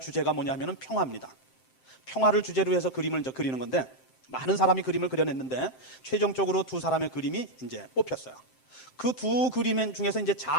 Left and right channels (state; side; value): late; right; 7.7 ms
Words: 주제가 뭐냐면 평화입니다. 평화를 주제로 해서 그림을 이제 그리는 건데 많은 사람이 그림을 그려냈는데 최종적으로 두 사람의 그림이 이제 뽑혔어요. 그 두 그림 중에서 이제